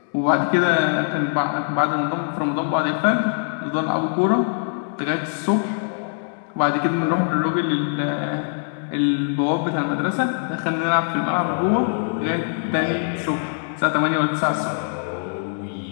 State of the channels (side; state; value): right; silent; 64 dB below the other